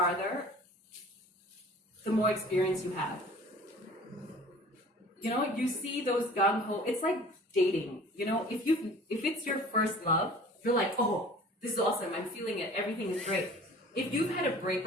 the more experience you have. You see those gung-ho, it's like dating, if it's your first love, you're like, oh, this is awesome, I'm feeling it, everything is great. If you've had a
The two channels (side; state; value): both; normal; correlation 0.46